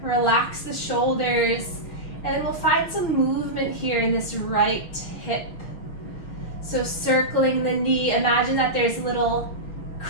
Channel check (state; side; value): late; right; 6.5 ms